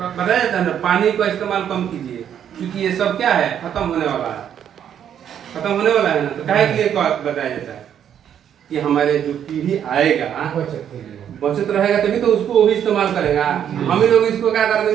जाता है ना, पानी का इस्तेमाल कम कीजिए, क्योंकि ये सब क्या है? खत्म होने वाला है, खत्म होने वाला है ना। तो काहे के लिए बताया जाता है कि हमारे जो पीढ़ी आएगा बचत रहेगा तभी तो उसको वो भी इस्तेमाल करेगा। हम ही लोग इसको क्या कर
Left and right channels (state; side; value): quieter; left; 9.3 dB